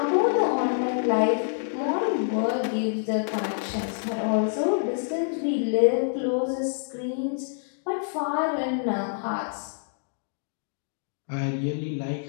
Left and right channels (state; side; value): silent; right; digital silence